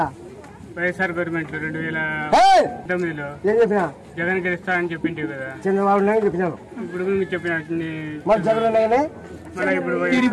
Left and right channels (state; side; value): identical; both; correlation 1.00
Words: వైఎస్ఆర్ గవర్నమెంట్ 2019లో జగన్ గెలుస్తాడని చెప్పింటే కదా చంద్రబాబు నాయుడు చెప్పినాను. ఇప్పుడు చెప్పిన